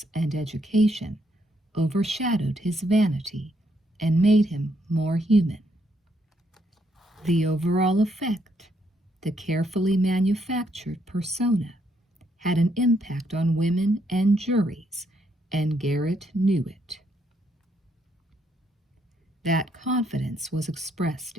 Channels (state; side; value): normal; both; correlation 0.74